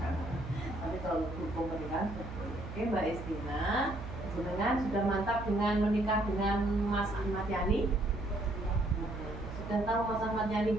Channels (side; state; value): right; noise; hum, 9 dB below the sound